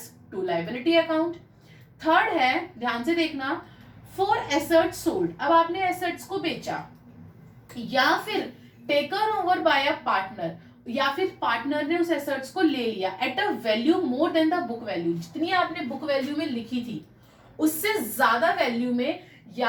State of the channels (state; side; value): identical; both; correlation 1.00